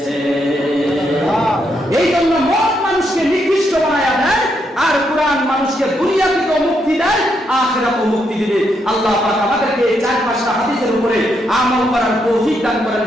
এই জন্য মদ মানুষকে নিকৃষ্ট বানায়া দেয়, আর কোরআন মানুষকে দুনিয়াতেও মুক্তি দেয়, আখিরাতেও মুক্তি দিবে। আল্লাহ পাক আমাদেরকে এই 4-5টা হাদিসের উপরে আমল করার তৌফিক দান করেন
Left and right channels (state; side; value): normal; both; correlation 0.78